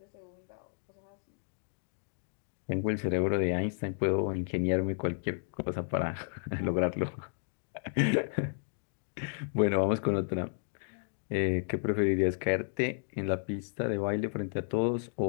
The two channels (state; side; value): silent; right; digital silence